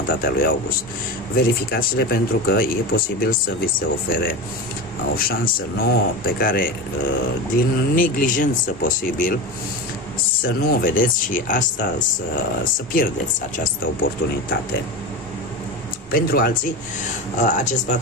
a lui august. Verificați-le pentru că e posibil să vi se ofere o șansă nouă pe care, din neglijență posibil, să nu o vedeți și asta să pierdeți această oportunitate. Pentru alții, acest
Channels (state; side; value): normal; both; correlation 0.25